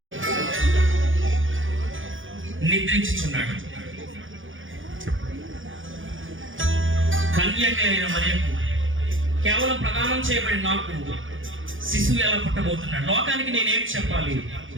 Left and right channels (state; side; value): late; left; 0.57 ms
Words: నిద్రించుచున్నాడు. కన్యక అయిన మరియకు కేవలం ప్రదానం చేయబడిన నాకు శిశువు ఎలా పుట్టబోతున్నాడు, లోకానికి నేనేం చెప్పాలి?